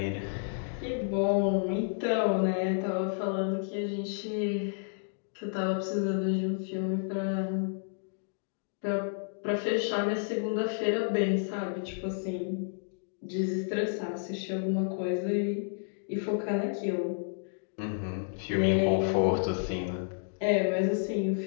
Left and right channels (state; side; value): silent; right; digital silence